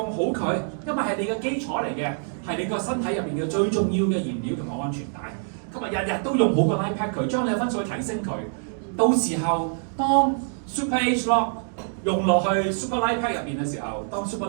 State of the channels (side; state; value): left; silent; 62 dB below the other